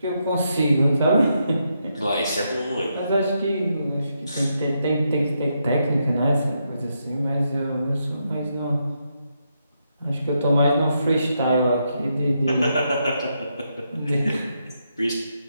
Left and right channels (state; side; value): inverted; both; correlation -0.81